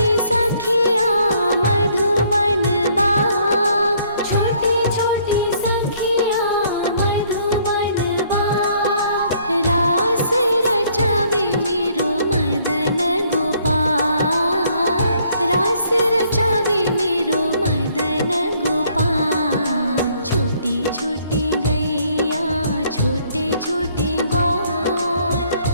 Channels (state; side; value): inverted; both; correlation -0.64